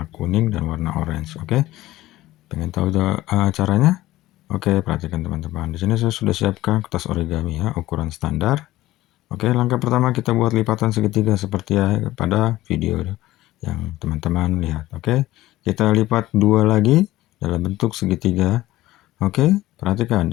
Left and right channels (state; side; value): quieter; right; 16.5 dB